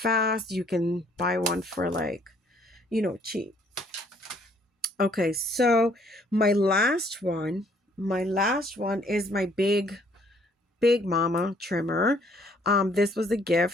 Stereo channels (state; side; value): normal; both; correlation 0.63